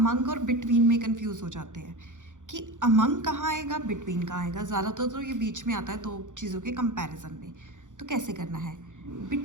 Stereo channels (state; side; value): late; left; 0.86 ms